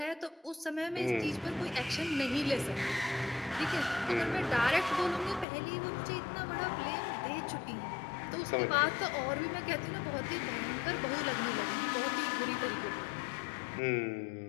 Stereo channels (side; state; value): right; drops out; at 5.5 s